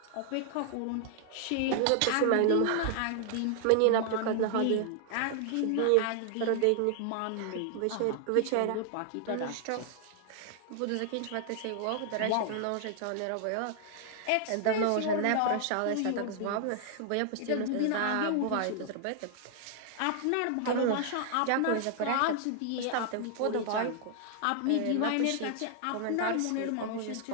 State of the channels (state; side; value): different; both; correlation 0.00